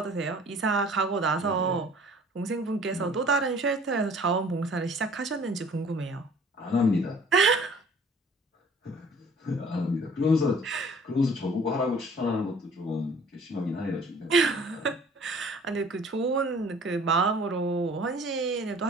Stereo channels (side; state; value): both; normal; correlation 0.52